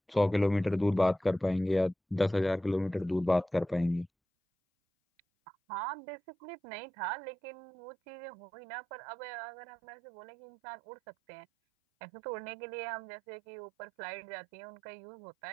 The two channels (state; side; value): drops out; left; at 4.1 s